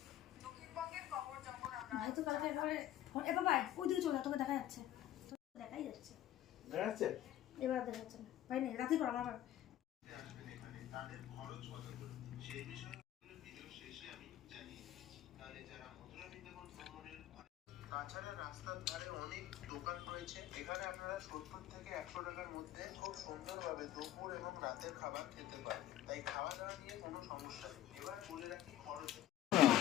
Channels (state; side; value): quieter; right; 12.8 dB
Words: ভাই তো কালকে এ বাবা ওইদিকে চলে তোকে দেখা যাচ্ছে, দেখাই যাচ্ছে, দেখা যাচ্ছে এবার দেখা যাচ্ছে না ভাই, নেই রাতে পর আমার তাছাড়া রাস্তার ধারে অনেক দোকান রয়েছে, এখানে আপনারা 70 থেকে 100 টাকার মধ্যে খুব সুন্দরভাবে দুপুর এবং রাতের খাবার খেতে পারবেন, তাই খাওয়া দাওয়া নিয়ে কোনো সমস্যা নেই। এবার বলে রাখি খরচ